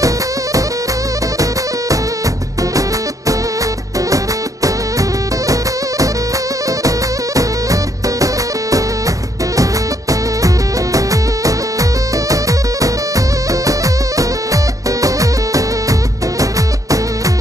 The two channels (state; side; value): late; left; 0.16 ms